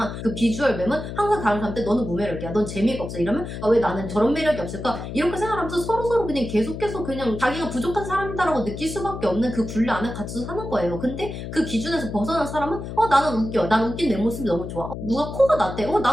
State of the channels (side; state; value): left; noise; hum, 8 dB below the sound